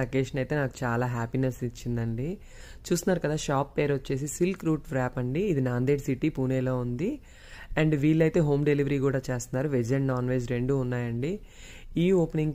అకేషన్ అయితే నాకు చాలా హ్యాపీనెస్ ఇచ్చిందండి. చూస్తున్నారు కదా, షాప్ పేరు వచ్చేసి సిల్క్ రూట్ వ్రాప్ అండి. ఇది నాందేడ్ సిటీ పూణేలో ఉంది. అండ్ వీళ్ళైతే హోమ్ డెలివరీ కూడా చేస్తున్నారు. వెజ్ అండ్ నాన్ వెజ్ రెండు ఉన్నాయండి. ఈ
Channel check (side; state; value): both; identical; correlation 1.00